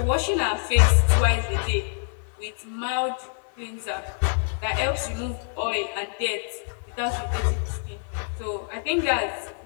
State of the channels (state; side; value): silent; right; 55 dB below the other